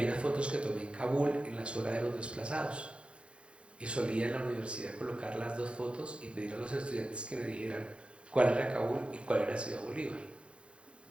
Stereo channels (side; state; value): left; late; 0.058 ms